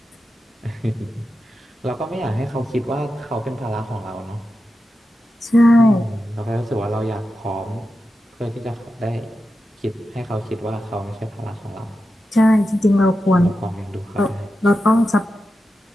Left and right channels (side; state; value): both; normal; correlation 0.90